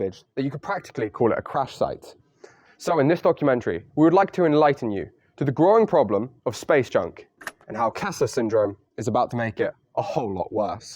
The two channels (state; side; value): identical; both; correlation 1.00